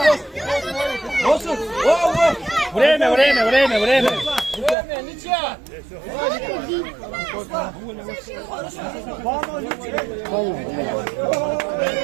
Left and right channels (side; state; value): left; drops out; at 4.8 s